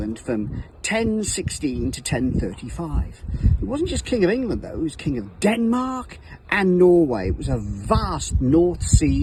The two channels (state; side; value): identical; both; correlation 1.00